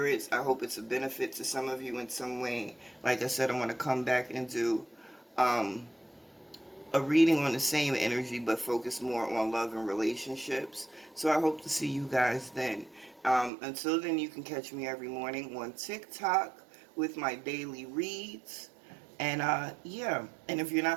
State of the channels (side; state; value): left; drops out; at 13.5 s